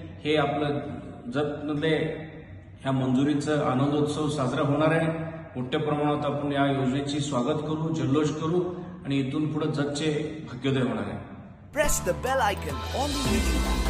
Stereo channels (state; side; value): identical; both; correlation 1.00